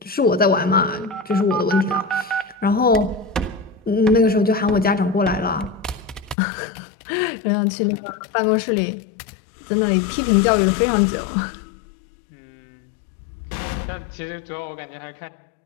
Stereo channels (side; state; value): right; drops out; at 6.4 s